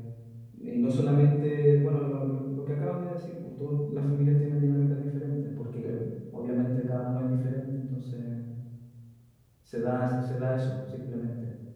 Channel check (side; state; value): both; identical; correlation 1.00